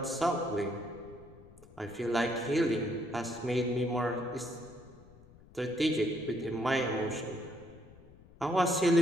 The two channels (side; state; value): left; noise; rumble, 23 dB below the sound